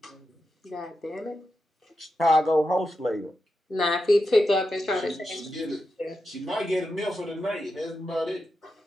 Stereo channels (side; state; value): both; normal; correlation 0.88